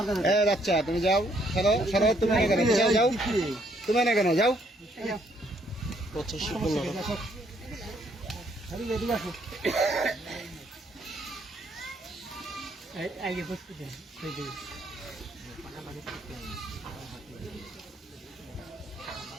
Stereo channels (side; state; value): both; normal; correlation 0.69